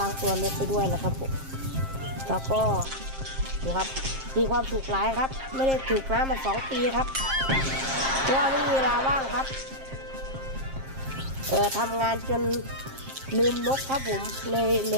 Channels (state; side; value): late; left; 7.5 ms